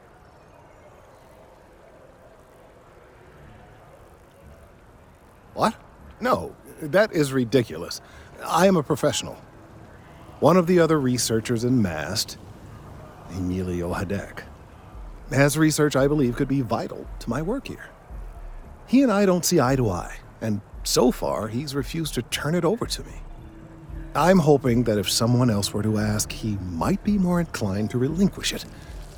What? No, that is ridiculous. I am a professional. One of the other researchers in MAST, Emilio Hadek, has research I believe could be vital to my work here. He and I don't see eye to eye, and so far he's refused to turn it over to me. I'm hoping that if someone else were to ask, he might be more inclined to relinquish it.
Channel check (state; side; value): identical; both; correlation 1.00